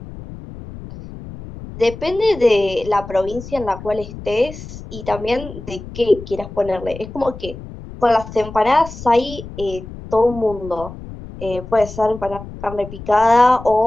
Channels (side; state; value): left; noise; rumble, 13 dB below the sound